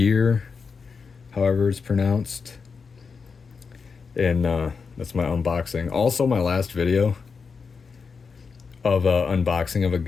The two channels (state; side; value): quieter; right; 5.3 dB